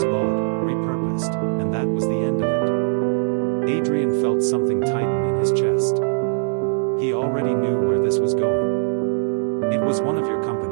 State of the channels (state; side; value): silent; left; digital silence